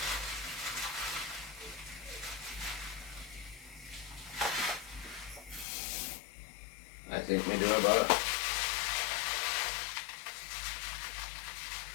I think we do about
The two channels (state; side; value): drops out; right; at 5.7 s